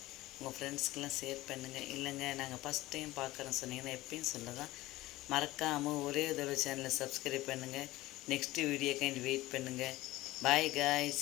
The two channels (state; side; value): quieter; right; 17.9 dB